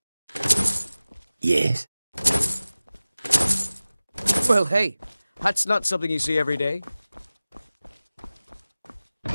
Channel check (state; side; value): inverted; both; correlation -0.97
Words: Yes? Well, hey, that's not something you see every day.